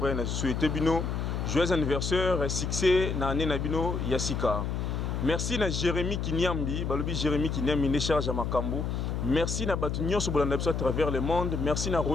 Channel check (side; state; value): left; noise; hum, 2 dB below the sound